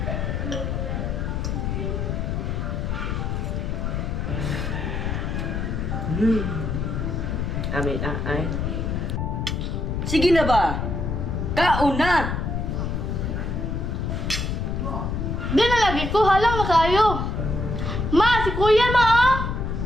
Amin, ay. Sige na ba? Kaon na! Di na lagi ko, halang na kayo. Ma, si kuya ma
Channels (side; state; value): left; noise; rumble, 1 dB below the sound